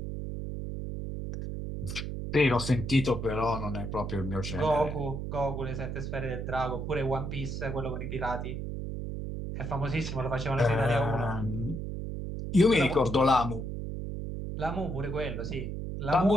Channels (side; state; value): right; noise; hum, 5 dB below the sound